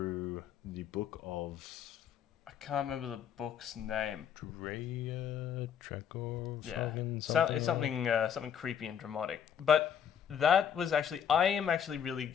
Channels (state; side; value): quieter; right; 8.4 dB